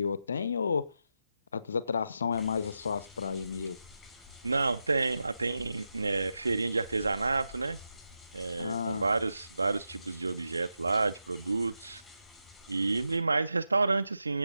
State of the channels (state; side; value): inverted; both; correlation -0.88